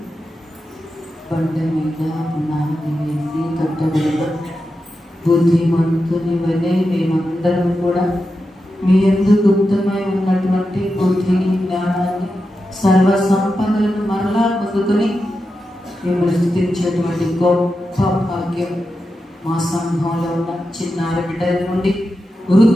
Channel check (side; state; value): both; normal; correlation 0.89